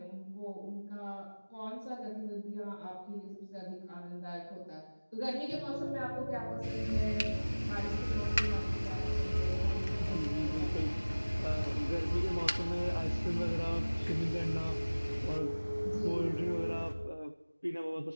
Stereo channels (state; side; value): inverted; both; correlation -1.00